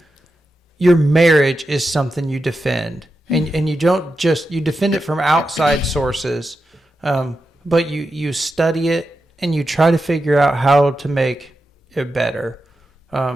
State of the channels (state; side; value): normal; both; correlation 0.89